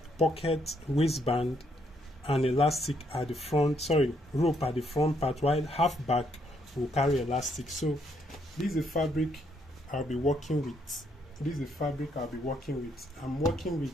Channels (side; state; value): both; normal; correlation 0.73